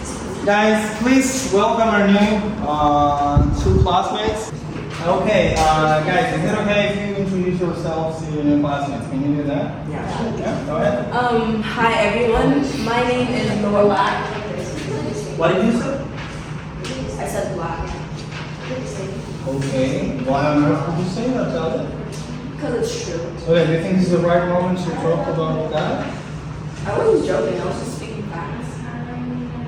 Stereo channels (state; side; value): identical; both; correlation 1.00